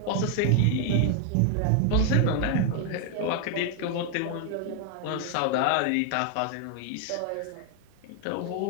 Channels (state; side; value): different; both; correlation 0.00